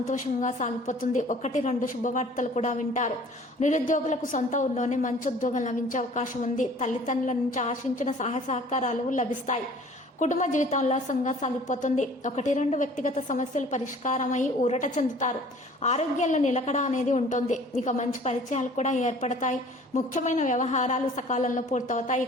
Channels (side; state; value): both; normal; correlation 0.50